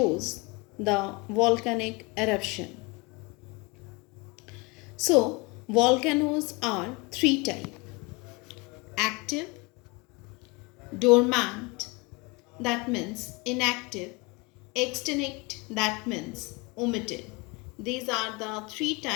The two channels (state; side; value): quieter; right; 26.4 dB